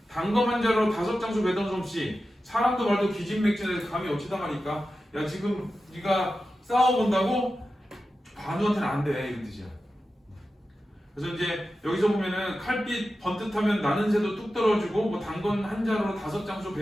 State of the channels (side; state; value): both; normal; correlation 0.92